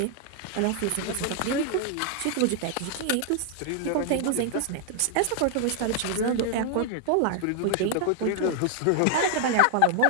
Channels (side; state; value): both; different; correlation 0.00